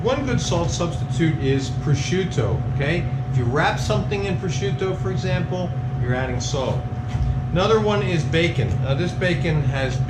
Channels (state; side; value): identical; both; correlation 1.00